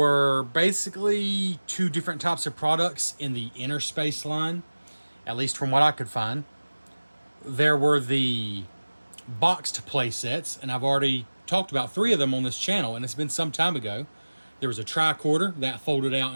basically two different types of products in the Innerspace line, at least from what I could find. There were the boxed play sets, and I've already talked about three of them on this channel, and it's been some time ago. There was a tricorder that folded out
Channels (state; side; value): inverted; both; correlation -1.00